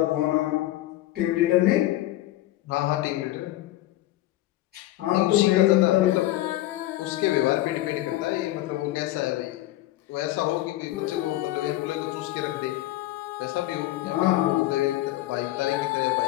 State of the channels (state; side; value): quieter; right; 15.8 dB